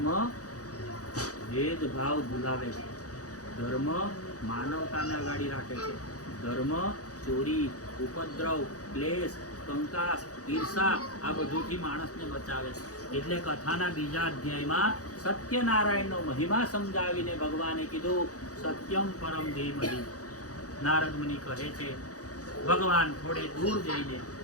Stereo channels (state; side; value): late; right; 0.67 ms